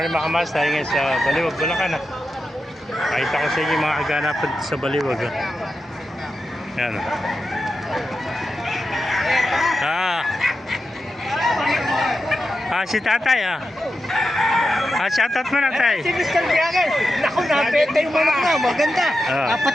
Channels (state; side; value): normal; both; correlation 0.89